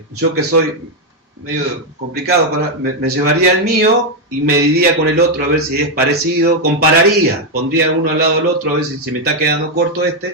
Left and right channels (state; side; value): normal; both; correlation 0.03